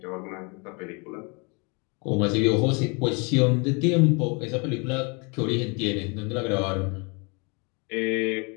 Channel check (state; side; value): quieter; right; 31.6 dB